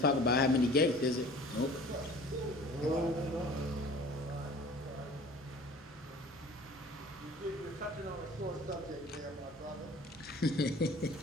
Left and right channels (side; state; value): both; normal; correlation 0.46